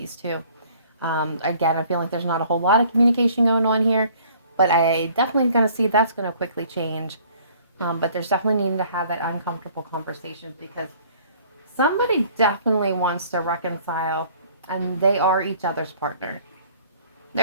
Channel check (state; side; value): inverted; both; correlation -0.56